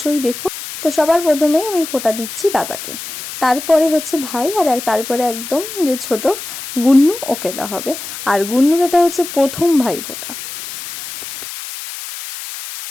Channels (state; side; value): noise; left; hiss, 10 dB below the sound